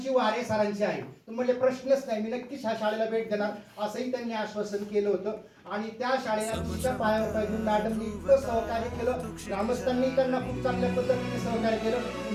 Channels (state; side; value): identical; both; correlation 1.00